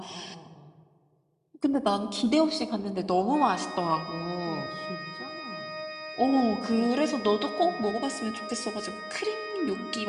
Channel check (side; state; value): both; identical; correlation 1.00